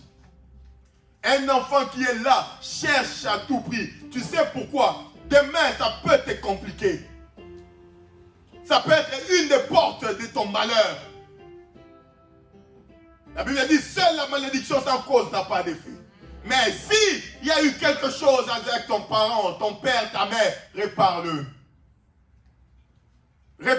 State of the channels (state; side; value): identical; both; correlation 1.00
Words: Un enfant qui est là cherche à tout prix. Tu sais pourquoi? Demain, ça peut te compliquer. Ça peut être une des portes de ton malheur. La Bible dit, seule la malédiction sans cause n'a pas d'effet. Mais si il y a eu quelque chose avec ton parent, ton père, ta mère, répare-le.